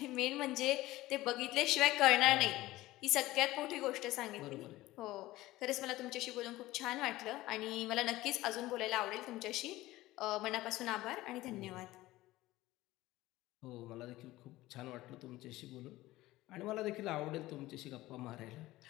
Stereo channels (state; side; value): quieter; right; 17.5 dB